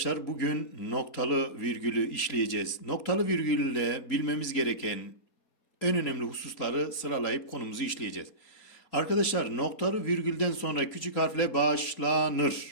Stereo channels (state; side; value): late; right; 4.2 ms